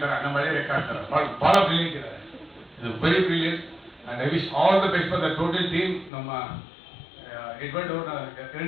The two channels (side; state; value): right; drops out; at 6.1 s